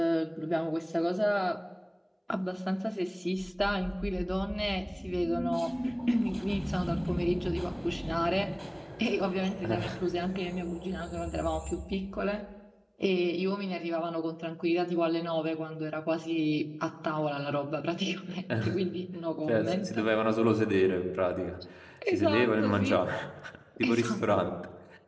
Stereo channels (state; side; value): identical; both; correlation 1.00